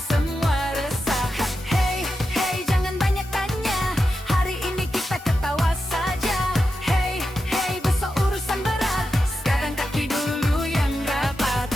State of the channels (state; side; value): normal; both; correlation 0.89